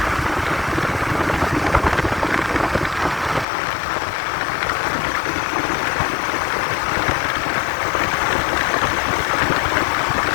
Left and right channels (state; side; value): drops out; right; at 3.5 s